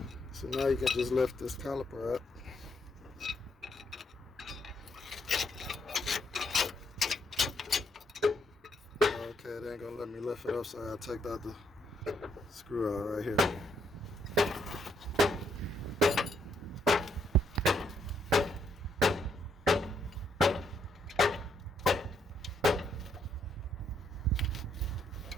So now you can just lift this caliper up. Okay, they ain't gonna let me lift it up, so I take out the screw out right here.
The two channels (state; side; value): normal; both; correlation 0.74